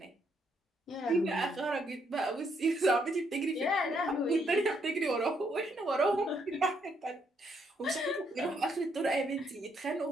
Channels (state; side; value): normal; both; correlation 0.74